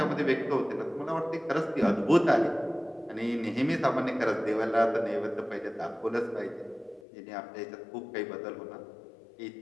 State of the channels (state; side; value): drops out; right; at 7.1 s